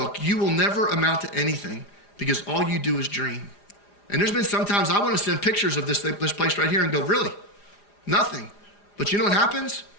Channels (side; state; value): right; late; 4.9 ms